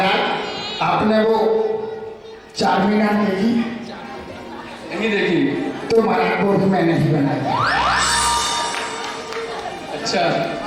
आपने वो चार मीनार देखी? नहीं देखी। तो महाराज वो भी मैंने ही बनाया। अच्छा,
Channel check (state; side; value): identical; both; correlation 1.00